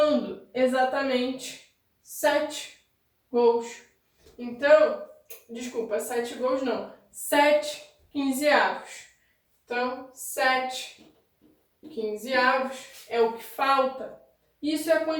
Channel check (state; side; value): identical; both; correlation 1.00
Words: exatamente 7 gols. Então, desculpa, 7 gols não, 7 quinzeavos. Então, 7 quinzeavos é o que falta. Isso é a